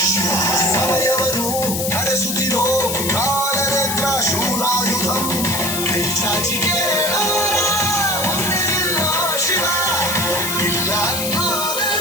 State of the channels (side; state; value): left; noise; hiss, 2 dB below the sound